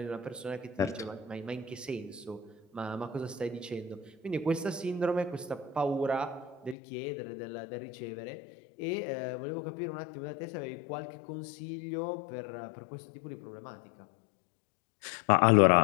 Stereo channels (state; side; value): drops out; right; at 6.8 s